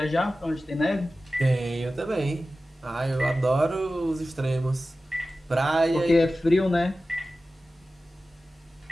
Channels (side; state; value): both; normal; correlation 0.95